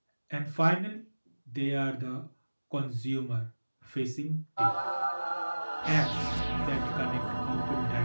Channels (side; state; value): both; inverted; correlation -1.00